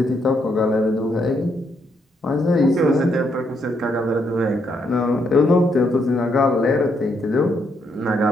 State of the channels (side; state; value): both; normal; correlation 0.76